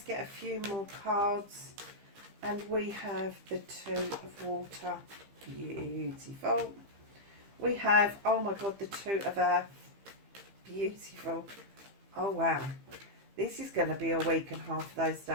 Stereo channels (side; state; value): left; late; 15 ms